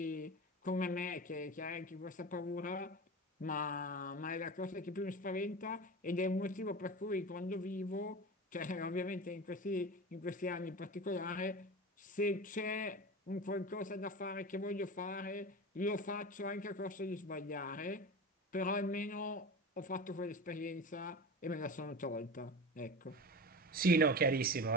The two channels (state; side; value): normal; both; correlation 0.29